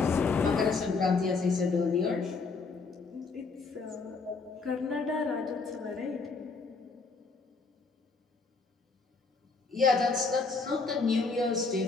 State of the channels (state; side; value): quieter; right; 4.3 dB